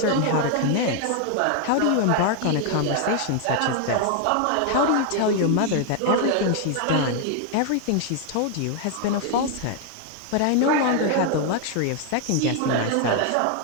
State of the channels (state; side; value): different; both; correlation 0.00